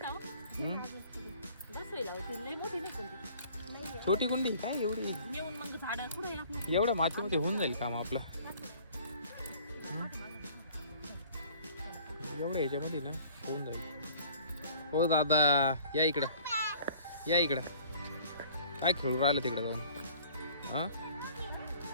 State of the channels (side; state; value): both; inverted; correlation -0.52